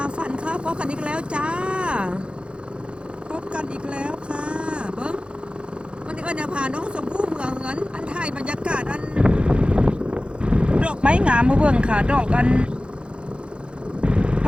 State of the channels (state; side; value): late; left; 0.056 ms